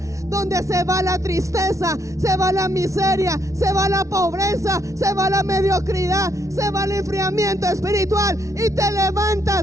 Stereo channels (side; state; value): left; late; 0.15 ms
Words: donde se va la tristeza, se va la miseria, se va la pobreza, se va la mediocridad, se va el enfriamiento espiritual, y te